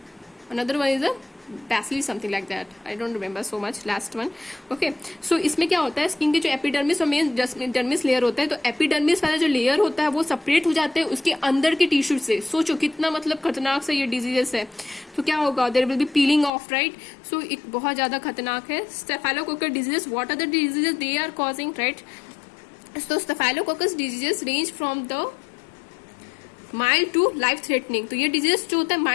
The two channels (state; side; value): drops out; right; at 16.5 s